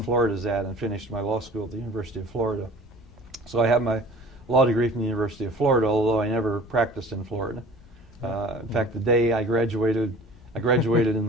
Florida is at, and finished my law school at the University of Florida. So I have my law degree from the University of Florida, although I never practiced in Florida. In fact, the day I graduated in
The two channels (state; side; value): normal; both; correlation 0.46